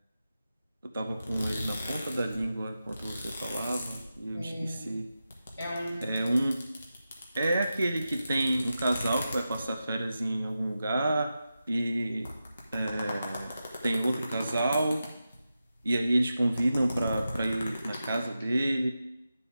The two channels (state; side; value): inverted; both; correlation -0.91